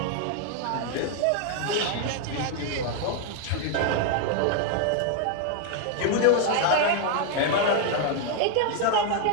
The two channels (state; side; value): different; both; correlation 0.00